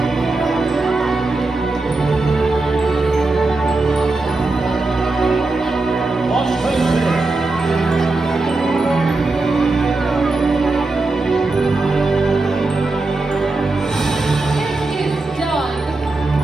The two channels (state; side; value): quieter; left; 3.3 dB